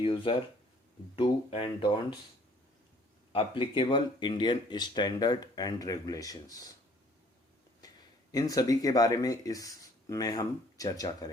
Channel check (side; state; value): both; normal; correlation 0.58